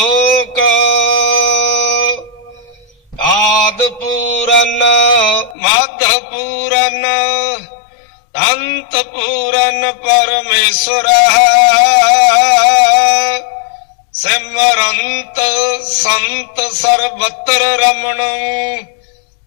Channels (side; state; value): right; drops out; at 5.6 s